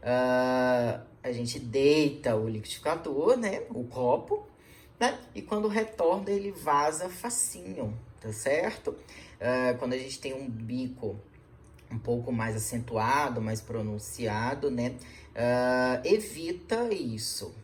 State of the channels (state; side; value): identical; both; correlation 1.00